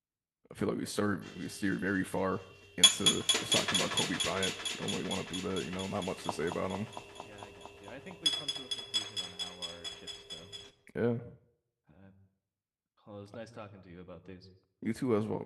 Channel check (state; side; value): identical; both; correlation 1.00